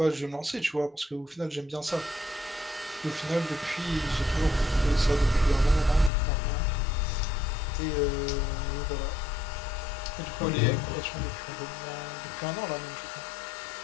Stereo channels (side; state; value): right; drops out; at 6.1 s